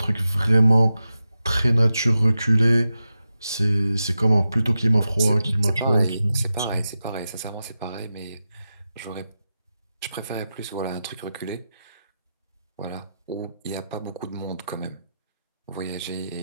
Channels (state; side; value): inverted; both; correlation -0.91